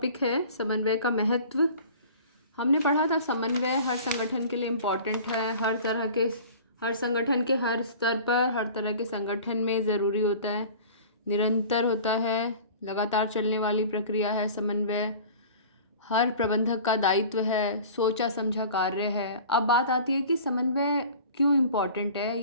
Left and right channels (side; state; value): both; inverted; correlation -0.42